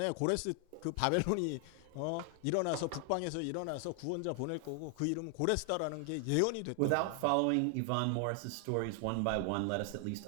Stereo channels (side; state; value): both; different; correlation 0.00